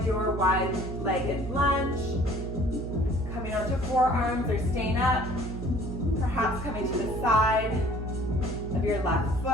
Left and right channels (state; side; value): noise; right; hum, 7 dB below the sound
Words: your wide-legged lunge. Coming onto forearms or staying up. Perhaps coming to the side of your left